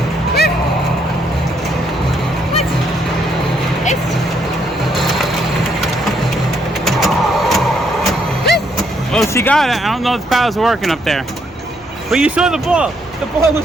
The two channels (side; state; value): left; noise; hum, 26 dB below the sound